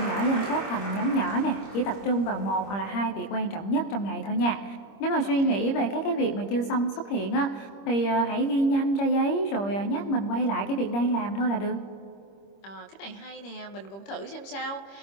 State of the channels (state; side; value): late; right; 25 ms